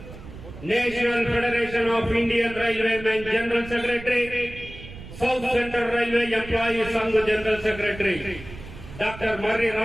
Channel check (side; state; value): right; noise; rumble, 15 dB below the sound